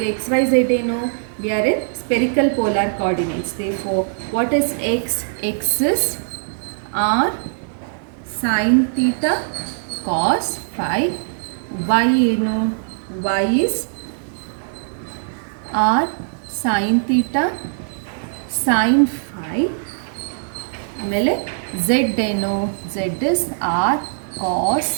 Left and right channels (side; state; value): left; silent; digital silence